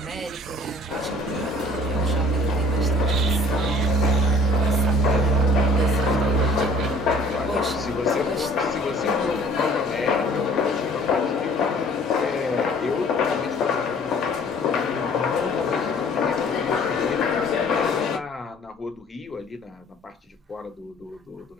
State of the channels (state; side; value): normal; both; correlation 0.52